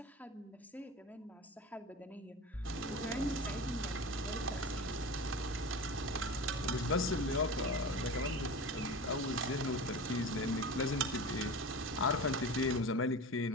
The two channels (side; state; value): both; normal; correlation 0.31